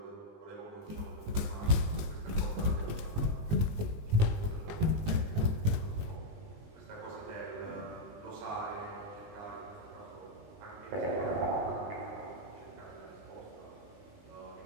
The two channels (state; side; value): late; left; 19 ms